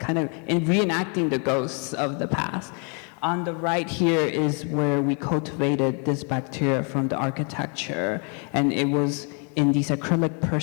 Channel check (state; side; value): quieter; right; 37.0 dB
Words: of reenacting the ghosts of the past. On the right here is where we cultivated this bacteria from the architecture, and it was in these acrylic